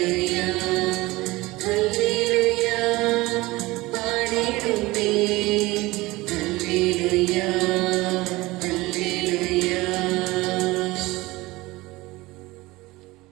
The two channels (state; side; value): quieter; left; 20.6 dB